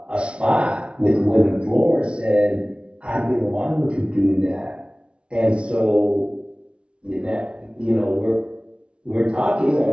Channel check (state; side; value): late; left; 0.058 ms